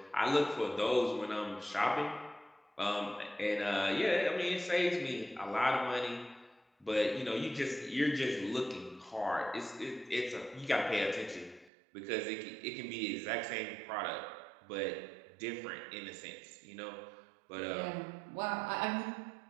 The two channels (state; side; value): drops out; left; at 11.7 s